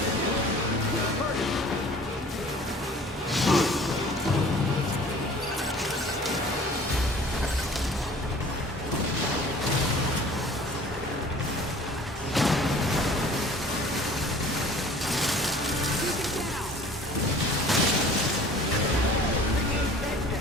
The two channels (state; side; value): normal; both; correlation 0.48